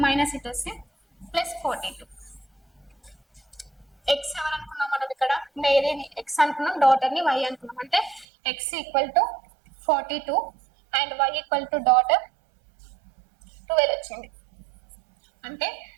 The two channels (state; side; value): drops out; left; at 8.2 s